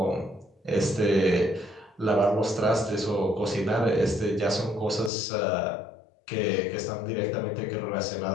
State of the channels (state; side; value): drops out; right; at 5.1 s